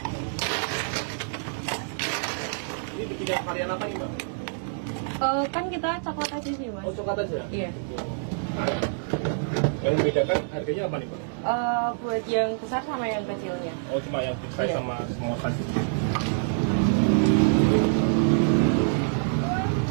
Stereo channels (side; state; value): left; silent; digital silence